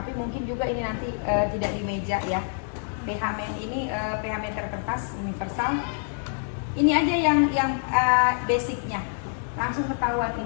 mungkin juga ini nanti tidak di meja ya. Ini pH meter kertas universal. Ini aja yang basicnya. Langsung ketahuan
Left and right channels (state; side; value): silent; right; digital silence